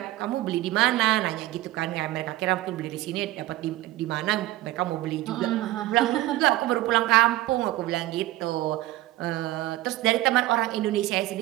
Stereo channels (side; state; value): left; quieter; 16.4 dB